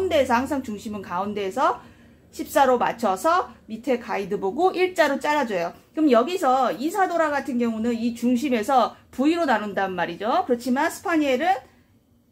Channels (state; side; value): identical; both; correlation 1.00